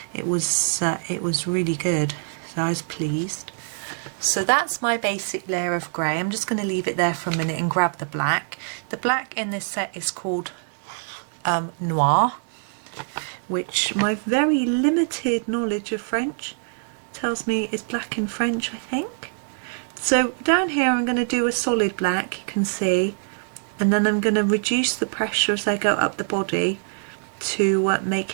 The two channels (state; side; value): silent; left; digital silence